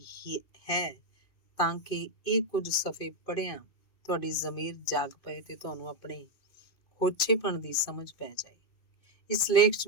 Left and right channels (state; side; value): late; right; 2.6 ms